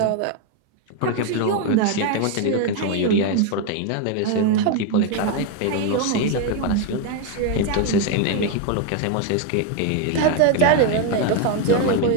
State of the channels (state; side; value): different; both; correlation 0.01